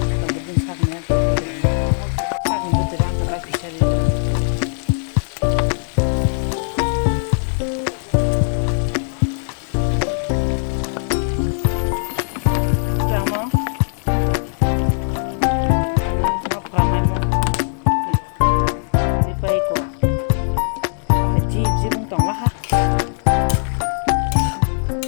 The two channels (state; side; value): silent; right; digital silence